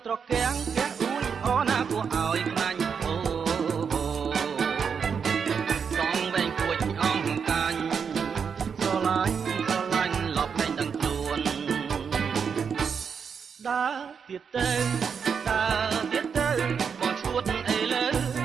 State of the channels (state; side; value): quieter; left; 6.5 dB